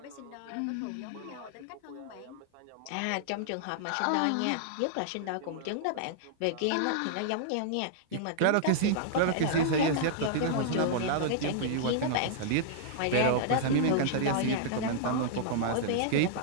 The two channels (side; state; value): both; different; correlation -0.01